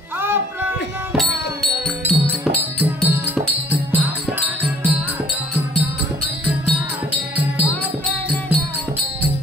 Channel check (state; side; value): normal; both; correlation 0.58